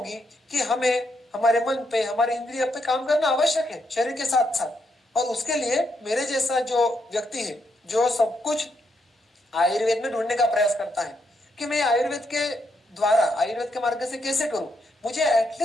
कि हमें हमारे मन पे, हमारे इंद्रिय पे काम करना आवश्यक है शरीर के साथ साथ। और उसके लिए मेरे जैसा जो व्यक्ति है जो सब कुछ आयुर्वेद में ढूंढने का प्रयास करता है कि मैं आयुर्वेद के द्वारा, आयुर्वेद के मार्ग से कैसे करूं, मुझे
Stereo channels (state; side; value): normal; both; correlation 0.79